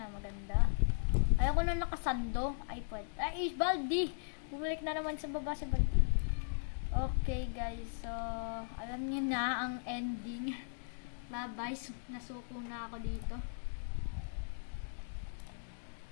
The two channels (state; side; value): silent; right; digital silence